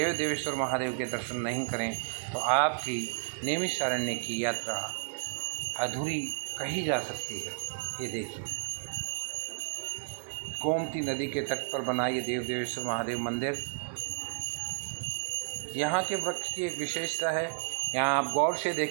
देवेश्वर महादेव के दर्शन नहीं करें तो आपकी नैमिषारण्य की यात्रा अधूरी कही जा सकती है। ये देखिए गोमती नदी के तट पर बना ये देव देवेश्वर महादेव मंदिर। यहाँ के वृक्ष की एक विशेषता है, यहाँ आप गौर से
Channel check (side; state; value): left; silent; digital silence